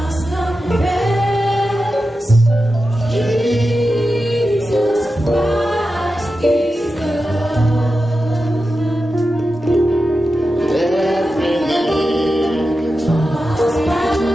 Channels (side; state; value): both; normal; correlation 0.91